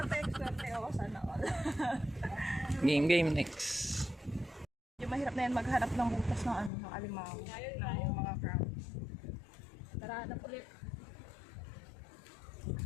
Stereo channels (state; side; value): drops out; right; at 6.7 s